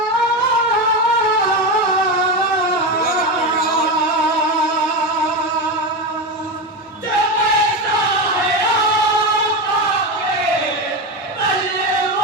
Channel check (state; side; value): normal; both; correlation 0.17